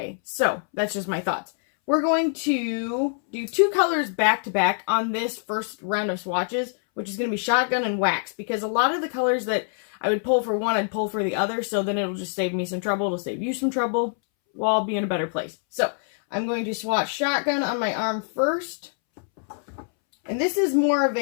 So, that's just my thoughts. We're going to do two colors back to back on this first round of swatches, which is going to be shotgun and wax, because a lot of the colors that I would pull for one, I'd pull for the other, so then it'll just save me some trouble. It'll save you some trouble. We'll all be in a better place. So, I'm going to swatch shotgun on my arm first. And this is more of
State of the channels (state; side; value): silent; right; 62 dB below the other